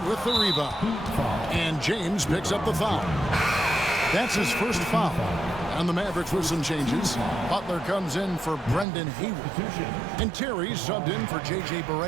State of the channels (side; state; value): left; drops out; at 8.8 s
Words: with the rebound. And James picks up the foul. That's his first foul. And the Mavericks with some changes. Butler comes in for Brendan Hayward. And Terry subbed in for J.J.